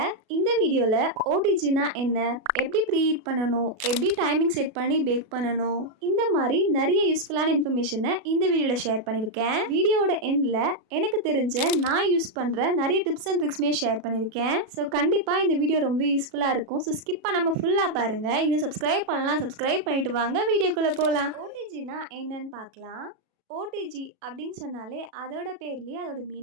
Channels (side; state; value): left; late; 37 ms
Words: இந்த வீடியோல ஓடிஜினா என்ன, எப்படி ப்ரீஹீட் பண்ணணும், எப்படி டைமிங் செட் பண்ணி பேக் பண்ணணும், இந்த மாதிரி நிறைய யூஸ்ஃபுல்லான இன்ஃபர்மேஷனை இந்த வீடியோல ஷேர் பண்ணியிருக்கேன். வீடியோட எண்ட்ல எனக்கு தெரிஞ்ச நான் யூஸ் பண்ற நிறைய டிப்ஸ் அண்ட் ட்ரிக்ஸ்மே ஷேர் பண்ணியிருக்கேன். ஸோ கண்டிப்பா இந்த வீடியோ ரொம்ப யூஸ்ஃபுல்லா இருக்கும். ஸோ ஸ்கிப் பண்ணாம ஃபுல்லா பாருங்க. இன்னும் சப்ஸ்கிரைப் பண்ணலாம், சப்ஸ்கிரைப் பண்ணிட்டு வாங்க வீடியோக்குள்ள போகலாம். ஓடிஜினா என்னன்னு பார்க்கலாம். ஓடிஜி அப்படின்னு சொன்னாலே அதோட பேர்லேயே அதோட